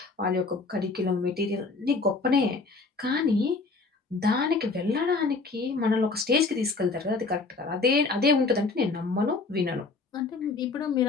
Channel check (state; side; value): quieter; right; 4.0 dB